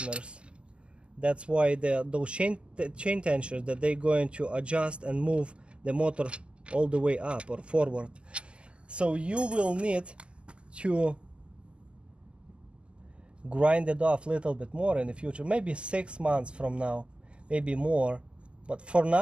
That's why those chain tensioners, that they're going to adjust and move the motor all the way up or forward. So you will need to grind it off a little bit more in the future, maybe 6 months from now, maybe more, but for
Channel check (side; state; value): left; late; 0.052 ms